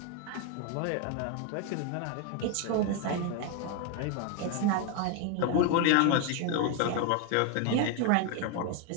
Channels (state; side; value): different; both; correlation 0.01